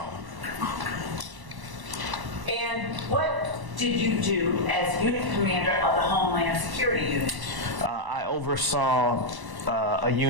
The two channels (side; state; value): left; late; 1.1 ms